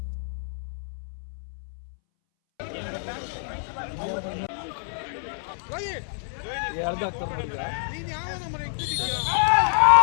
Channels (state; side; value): silent; right; 60 dB below the other